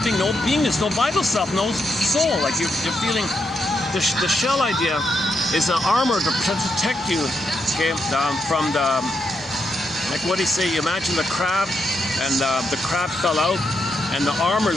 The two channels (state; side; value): normal; both; correlation 0.82